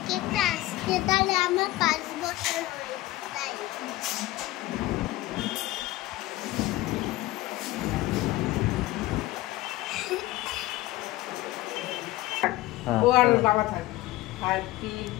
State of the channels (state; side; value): quieter; right; 17.4 dB